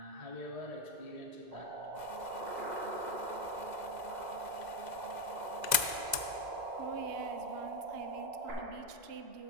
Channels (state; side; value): late; left; 2.0 ms